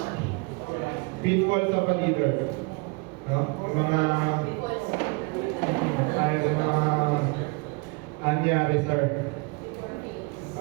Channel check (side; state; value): left; quieter; 29.9 dB